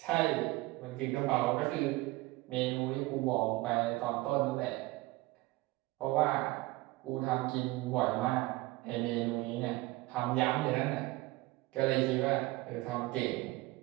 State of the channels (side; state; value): left; quieter; 20.5 dB